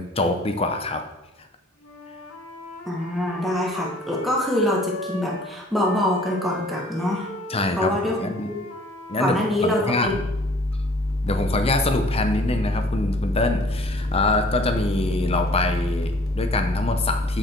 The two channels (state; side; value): normal; both; correlation 0.54